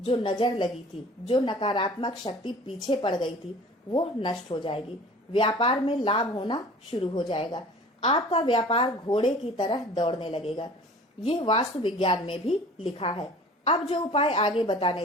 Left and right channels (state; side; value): normal; both; correlation 0.45